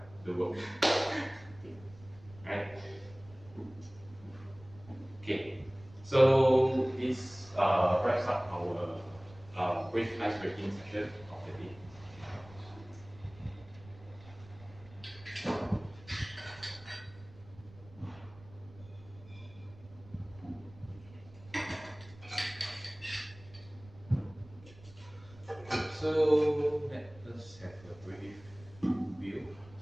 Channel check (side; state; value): right; noise; rumble, 21 dB below the sound